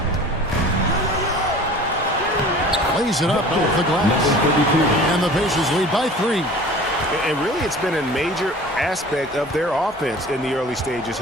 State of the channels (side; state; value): both; normal; correlation 0.43